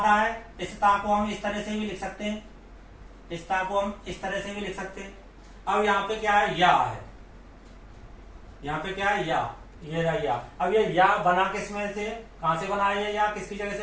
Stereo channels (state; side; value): identical; both; correlation 1.00